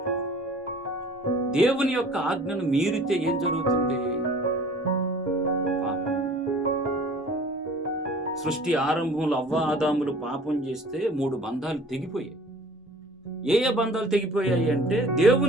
దేవుని యొక్క ఆజ్ఞను మీరితే ఏం జరుగుతుంది? పాపం. సృష్టి ఆరంభంలో అవ్వ ఆదాములు పాపం చేస్తే 3 బంధాలు తెగిపోయాయి. ఏ బంధాలు తెగిపోయాయి అంటే,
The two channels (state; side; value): normal; both; correlation 0.48